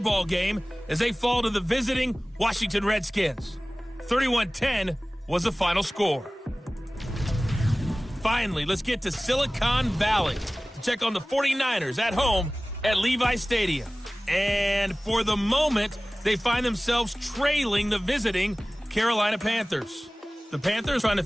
game as they fall to the visiting Washington Redskins. 31-10 was the final score. Finally, let's get to Silicon Valley to check on the 49ers at home at Levi Stadium. And for the moment, they find themselves trailing the visiting Carolina Panthers. The Panthers trying to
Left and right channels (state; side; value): normal; both; correlation 0.98